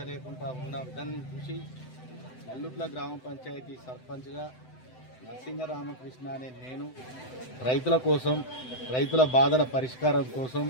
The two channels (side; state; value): right; late; 7.8 ms